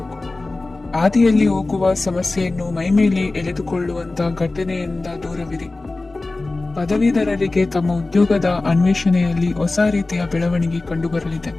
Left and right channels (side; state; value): right; quieter; 3.2 dB